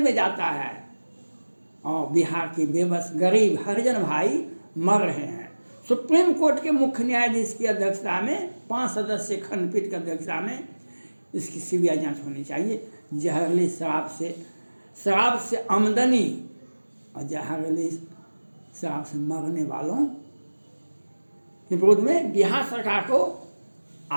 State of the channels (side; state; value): both; inverted; correlation -1.00